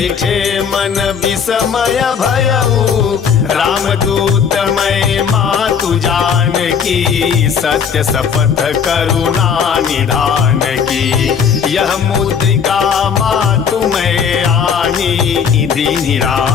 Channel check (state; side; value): quieter; right; 6.9 dB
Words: मन विस्मय भयऊ। रामदूत मैं मातु जान की, सत्य शपथ करुणा निधान की। यह मुद्रिका मातु मैं आनी, दीनि